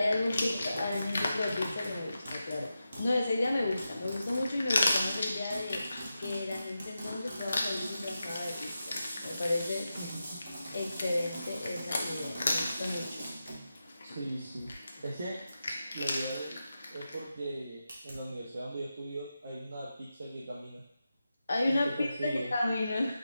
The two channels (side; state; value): both; inverted; correlation -0.90